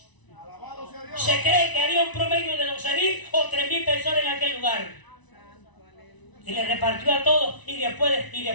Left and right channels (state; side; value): late; right; 1.0 ms